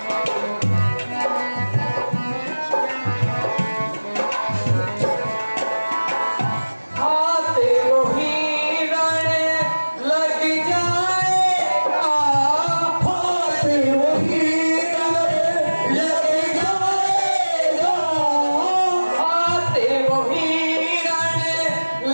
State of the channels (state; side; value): inverted; both; correlation -1.00